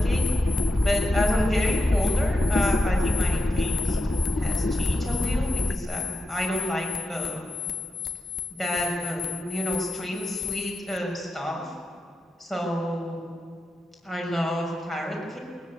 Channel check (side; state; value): both; normal; correlation 0.88